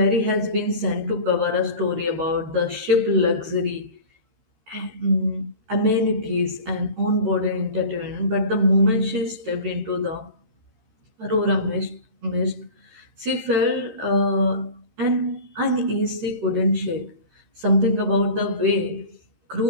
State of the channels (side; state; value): left; late; 14 ms